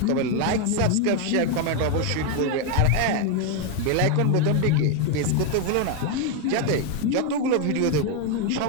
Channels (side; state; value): both; different; correlation 0.01